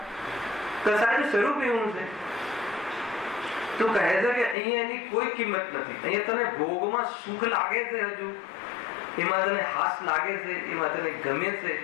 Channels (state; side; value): drops out; right; at 4.5 s